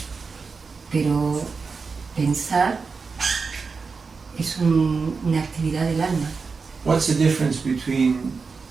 pero pensar es una actividad del alma. What's the difference between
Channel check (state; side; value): quieter; left; 4.8 dB